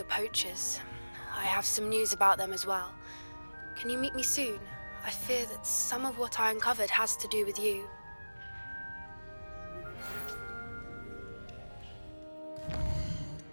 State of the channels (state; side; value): inverted; both; correlation -1.00